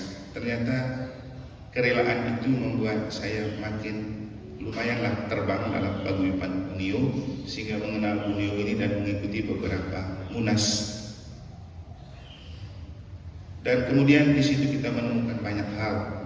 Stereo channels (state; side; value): identical; both; correlation 1.00